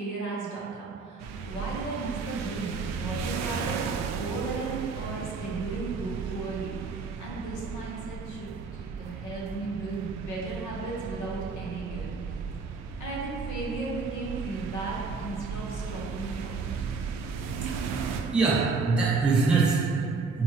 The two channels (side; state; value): left; quieter; 4.3 dB